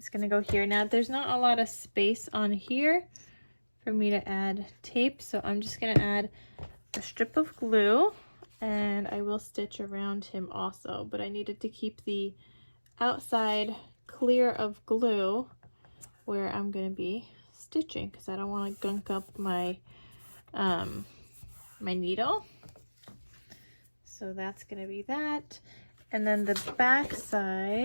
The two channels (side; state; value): both; inverted; correlation -1.00